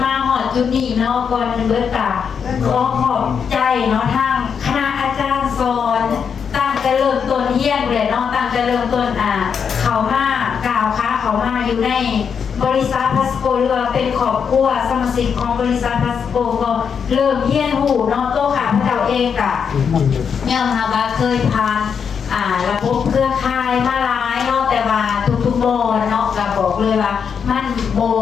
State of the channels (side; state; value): right; quieter; 6.8 dB